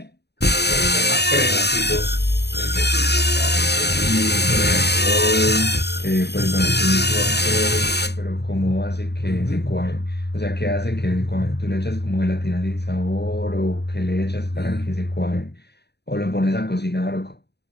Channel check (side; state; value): right; late; 0.48 ms